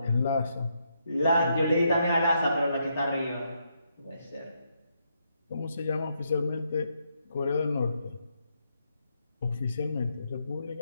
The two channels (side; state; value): both; inverted; correlation -0.78